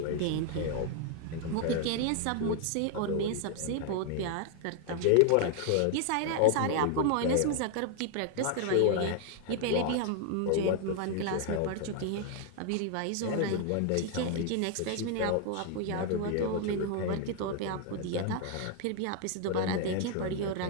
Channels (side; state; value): both; different; correlation 0.00